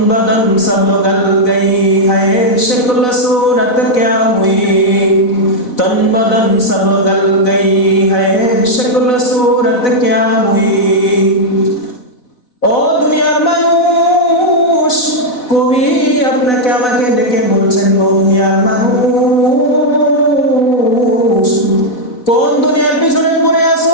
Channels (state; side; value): late; right; 4.0 ms